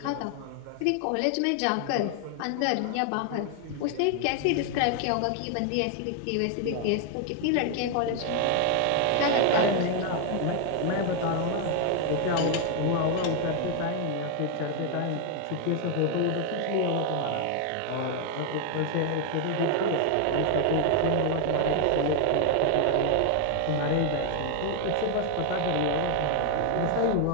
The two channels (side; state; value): both; different; correlation 0.00